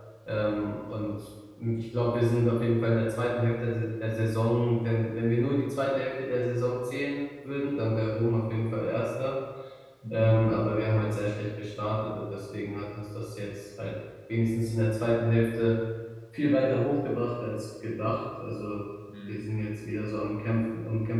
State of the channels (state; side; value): identical; both; correlation 1.00